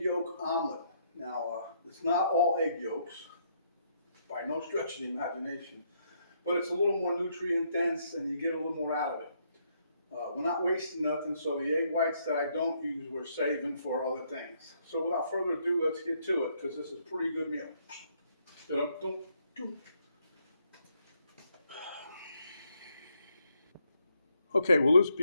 yolk omelet. Now, it's not all egg yolks, by no stretch of the imagination, but it's a little more nutrient dense and you get a little more out of it. We're not wasting nothing, so the egg whites that I don't use, we're saving for other things. So without further ado, let's get to it, because this is a pretty good meal. Okay, well, this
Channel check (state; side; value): inverted; both; correlation -0.73